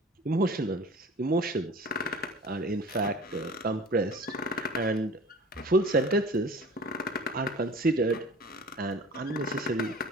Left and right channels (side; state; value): both; normal; correlation 0.43